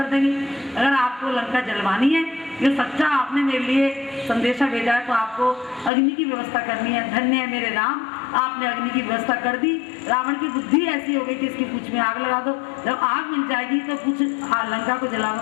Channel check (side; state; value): right; drops out; at 5.9 s